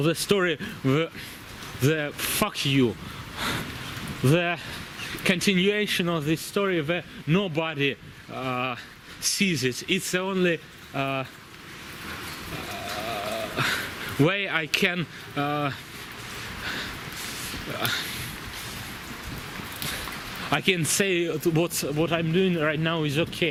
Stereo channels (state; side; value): identical; both; correlation 1.00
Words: story, the fuck you, the continuation of this story where nobody sees it. It's the only way I can say what I'm doing right now is